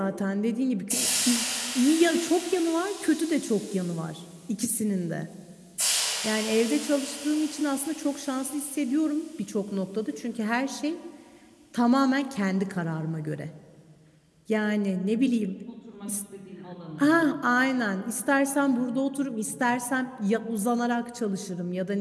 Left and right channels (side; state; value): both; identical; correlation 1.00